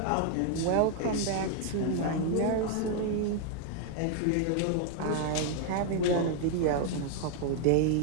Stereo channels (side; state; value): both; different; correlation 0.00